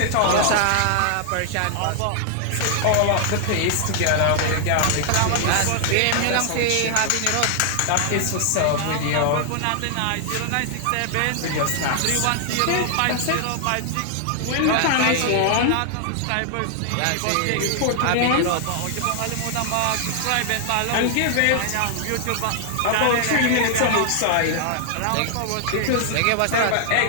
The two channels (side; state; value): both; different; correlation 0.00